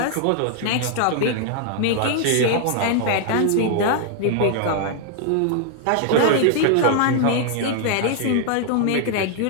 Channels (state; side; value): different; both; correlation 0.00